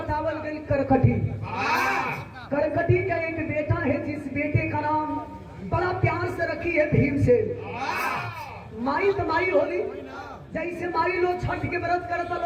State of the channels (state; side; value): identical; both; correlation 1.00